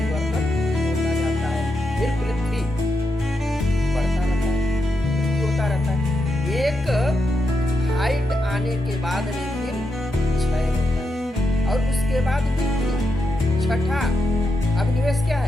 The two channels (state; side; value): normal; both; correlation 0.85